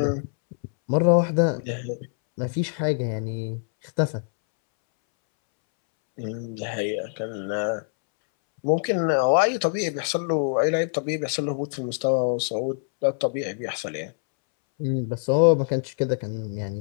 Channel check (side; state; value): right; silent; 62 dB below the other